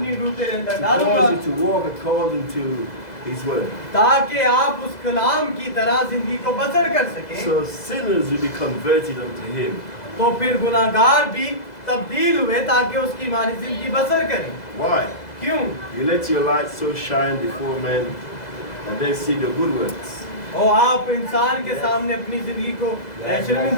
रूह तेरे अंदर To डालूंगा, cause you to walk according to His word. ताकि आप उस कलाम की तरह जिंदगी को बसर कर सकें। So sinners will be converted unto Him. तो फिर गुनाहगार भी तब्दील हुए ताकि उसकी मानी जिंदगी बसर करें। Why? क्यों? You let your light so shine before men that they see your good works. और आप इंसान के सामने अपनी जिंदगी को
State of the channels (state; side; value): late; right; 2.0 ms